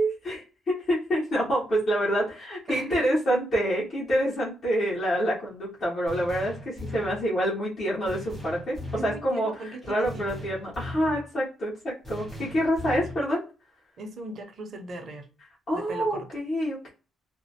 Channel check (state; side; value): normal; both; correlation 0.81